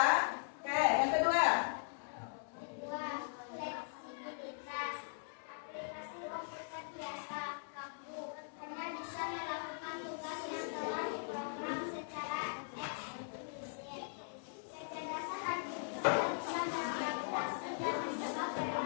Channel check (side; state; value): right; silent; digital silence